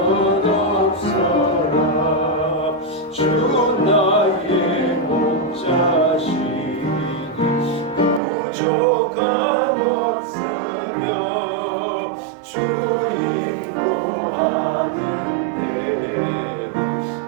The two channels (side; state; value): left; drops out; at 8.2 s